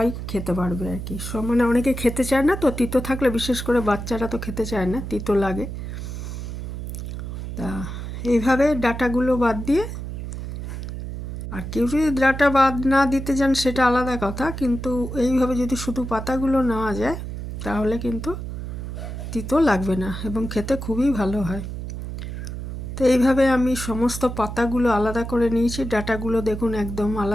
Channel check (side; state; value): right; noise; hum, 7 dB below the sound